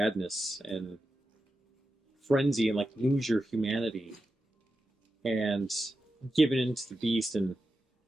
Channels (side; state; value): both; normal; correlation 0.90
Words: and frenzy and like lose your humanity and giving into the beast and